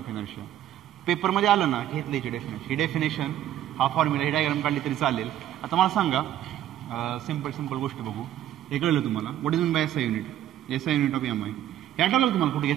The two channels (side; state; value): left; quieter; 12.1 dB